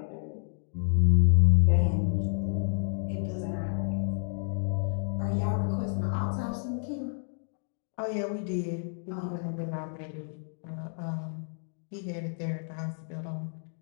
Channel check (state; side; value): silent; right; 58 dB below the other